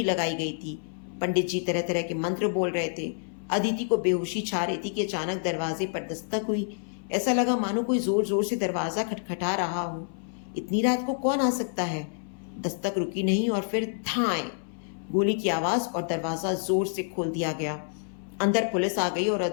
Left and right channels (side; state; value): right; silent; 59 dB below the other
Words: लगाई गई थी। पंडित जी तरह तरह के मंत्र बोल रहे थे। अदिति को बेहोशी छा रही थी कि अचानक दरवाजे पर दस्तक हुई। ऐसा लगा मानो कोई जोर जोर से दरवाजा खटखटा रहा हो। इतनी रात को कौन आ सकता है? दस्तक रुकी नहीं और फिर धाएं, गोली की आवाज और दरवाजा जोर से खोल दिया गया। अंदर पुलिस आ गई और